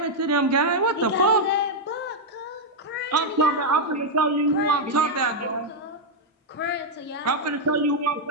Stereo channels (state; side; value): normal; both; correlation -0.02